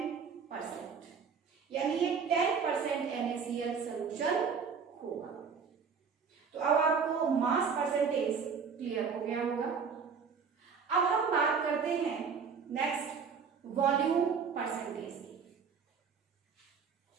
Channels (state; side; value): quieter; left; 6.0 dB